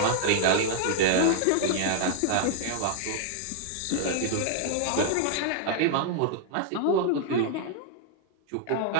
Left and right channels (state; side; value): different; both; correlation 0.00